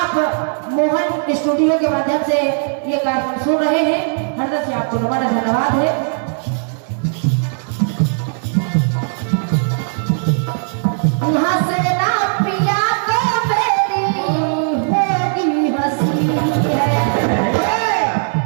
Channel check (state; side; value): silent; left; digital silence